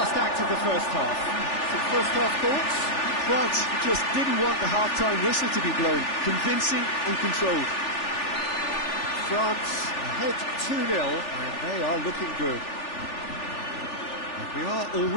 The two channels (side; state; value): right; late; 3.4 ms